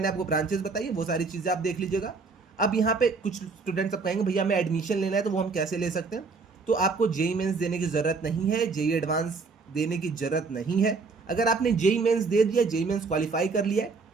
आपको ब्रांचेस बताई वो सारी चीज़ें आप देख लीजिएगा। अब यहाँ पे कुछ स्टूडेंट्स अब कहेंगे भैया हमें एडमिशन लेना है, तो वो हम कैसे ले सकते हैं। तो आपको जेई मेंस देने की ज़रूरत नहीं है, जेई एडवांस देने की ज़रूरत नहीं है। अगर आपने जेई मेंस दे दिया, जेई मेंस क्वालिफाई कर लिया है,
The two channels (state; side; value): quieter; left; 4.4 dB